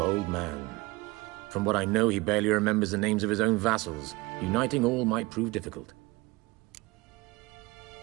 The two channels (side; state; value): left; quieter; 22.9 dB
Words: man. From what I know, he barely remembers the names of his own vassals. Uniting all might prove difficult.